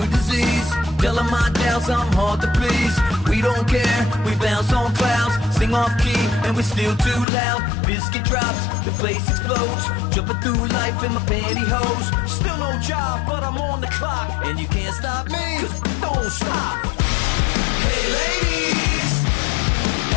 disease. Telling my doubts I'm hard to please. We don't care, we bounce on clouds. Sing off key and we're still too loud. Biscuit drops, the place explodes. Jumping through life in my pantyhose. Still no job, but I'm on the clock. And you can't stop me, cause don't stop. Hey lady.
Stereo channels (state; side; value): drops out; right; at 7.2 s